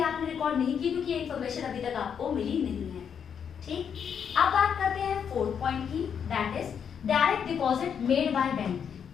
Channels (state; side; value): quieter; right; 7.6 dB